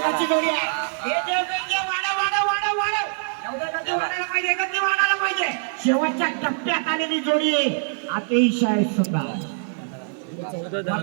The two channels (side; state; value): left; silent; digital silence